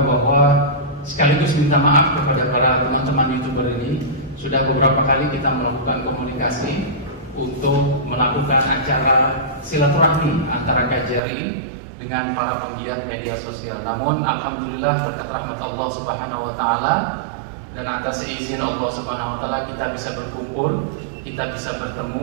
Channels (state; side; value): drops out; left; at 11.2 s